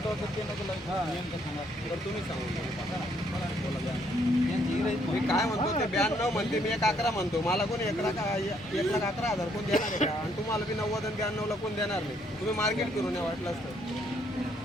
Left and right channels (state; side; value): normal; both; correlation 0.69